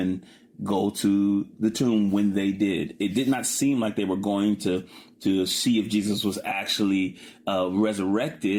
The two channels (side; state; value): both; identical; correlation 1.00